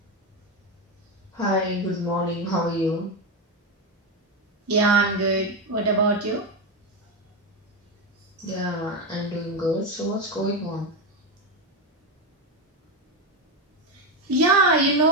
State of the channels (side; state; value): both; normal; correlation 0.11